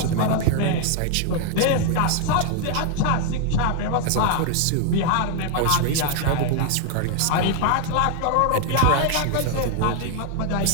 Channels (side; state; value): both; different; correlation 0.00